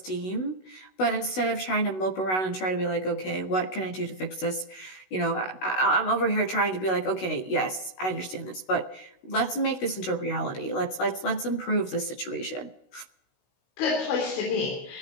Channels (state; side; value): late; right; 16 ms